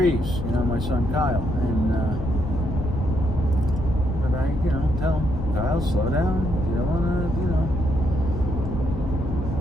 My son Kyle, and but I, tell him, Kyle, slow down. You don't want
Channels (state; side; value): noise; left; rumble, 5 dB below the sound